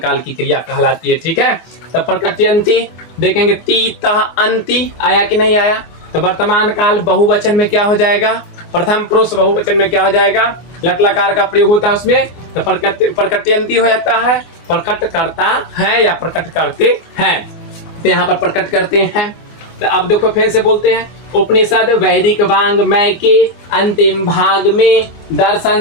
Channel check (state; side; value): late; right; 24 ms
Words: की क्रिया कहलाती है, ठीक है। तो प्रकटयन्ति देखेंगे, ती तह अंति आया कि नहीं आया, तो वर्तमान काल बहुवचन में क्या हो जाएगा, प्रथम पुरुष बहुवचन में क्या हो जाएगा, लट लकार का प्रयोग होता है उसमें, तो प्रकटयन्ति हो जाता है, प्रकट करता है या प्रकट करते हैं। तो यहाँ पर प्रकट करते हैं। तो अब देखो फिर से बोलते हैं, उपनिषद वैदिक वांग्मय के अंतिम भाग में